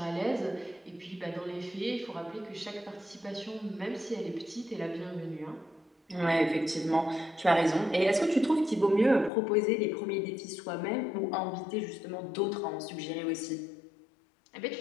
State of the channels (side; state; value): right; drops out; at 9.3 s